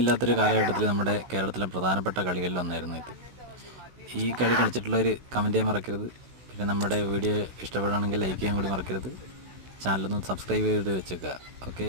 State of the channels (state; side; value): late; left; 16 ms